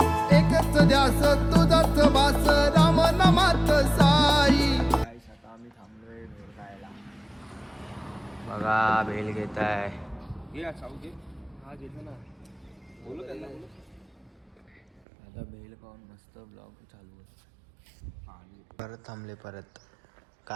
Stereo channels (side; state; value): left; drops out; at 15.0 s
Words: एकच ध्यास तुझाच बास, राम नामात साई. आता आम्ही थांबलोय भेल खायला. बघा भेल घेत आहे. घे साऊ घे. हा घेतो ना, बोलू त्यांना. आता भेल खाऊन मस्त ब्लॉग चालू आहे. परत थांबले परत.